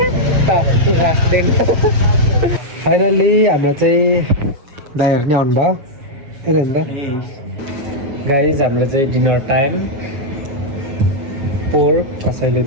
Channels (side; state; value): left; late; 7.6 ms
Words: फाइनल्ली हाम्रो चाहिँ दाइहरू नै आउनुभयो। गाइज हाम्रो चाहिँ डिनर टाइम। पोर्क, कसैले